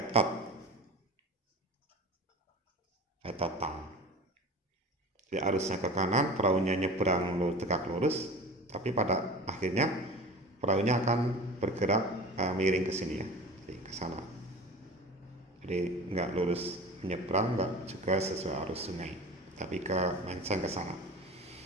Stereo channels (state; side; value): normal; both; correlation 0.36